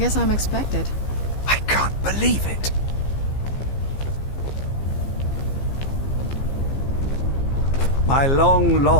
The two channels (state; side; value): late; right; 15 ms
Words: I'm expected. I can't believe it. My